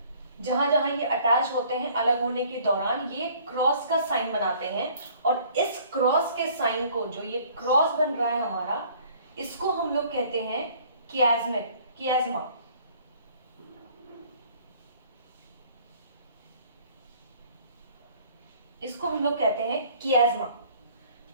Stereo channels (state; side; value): inverted; both; correlation -0.55